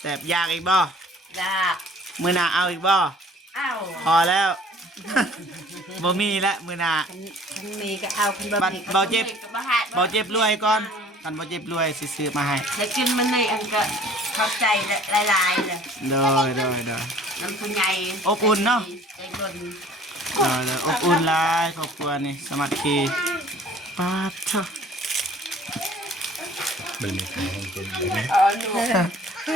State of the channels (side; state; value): both; normal; correlation 0.52